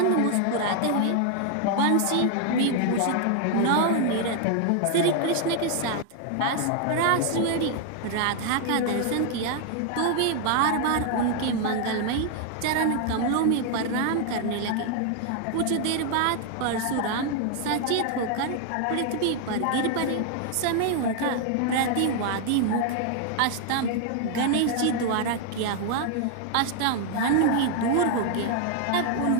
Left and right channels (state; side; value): different; both; correlation 0.00